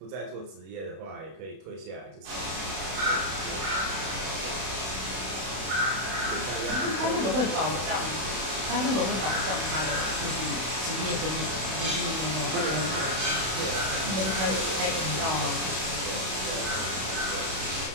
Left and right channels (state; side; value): late; left; 32 ms